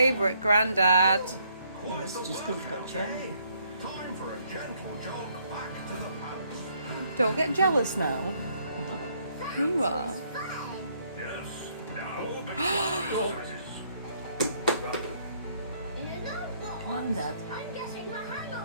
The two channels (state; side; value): inverted; both; correlation -0.68